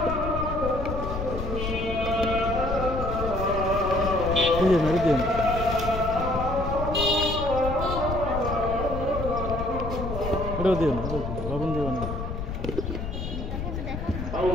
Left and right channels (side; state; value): left; noise; rumble, 5 dB below the sound